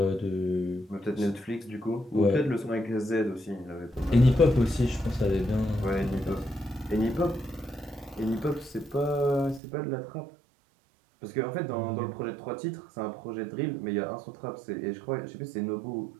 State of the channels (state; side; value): drops out; left; at 9.6 s